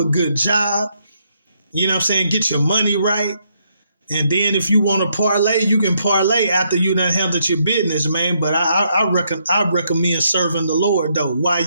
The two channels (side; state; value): both; inverted; correlation -0.75